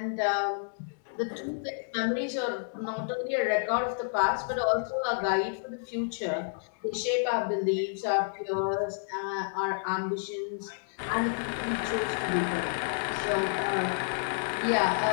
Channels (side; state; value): right; silent; digital silence